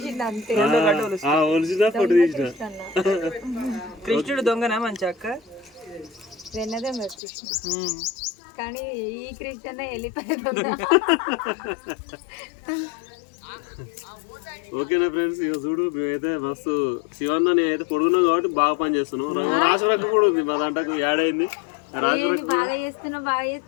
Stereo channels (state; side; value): drops out; right; at 7.2 s